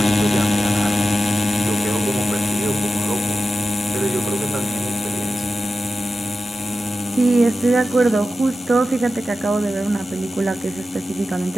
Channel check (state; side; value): normal; both; correlation 0.92